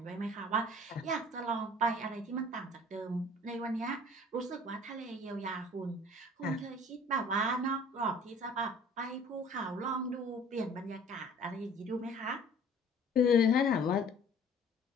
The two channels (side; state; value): both; normal; correlation 0.50